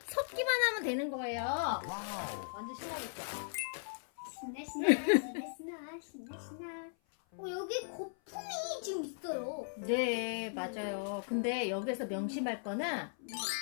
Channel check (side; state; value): right; silent; 53 dB below the other